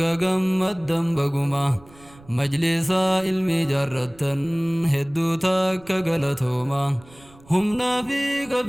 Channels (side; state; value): right; noise; rumble, 25 dB below the sound